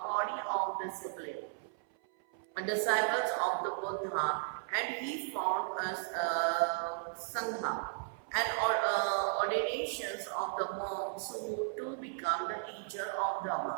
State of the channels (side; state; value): left; silent; 54 dB below the other